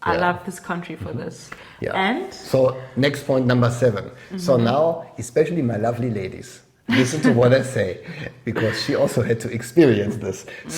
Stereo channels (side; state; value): both; identical; correlation 1.00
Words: I love this country for this. Yeah. And? So next point, number 7. So now, especially my lovely ladies, listen to what I say, because she also had to experience this.